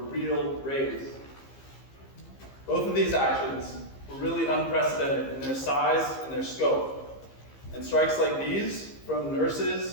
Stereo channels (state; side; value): late; right; 15 ms